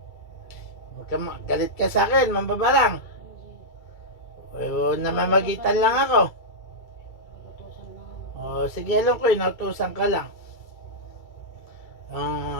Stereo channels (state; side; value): late; right; 2.3 ms